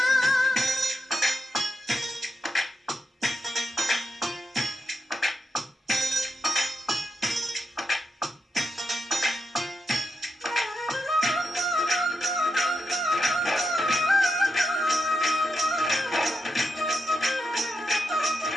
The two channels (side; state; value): both; normal; correlation 0.85